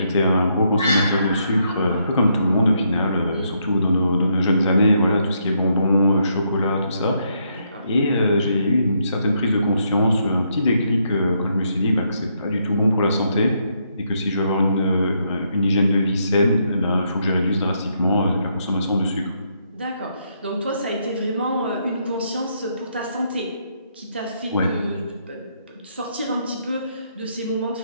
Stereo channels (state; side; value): inverted; both; correlation -0.75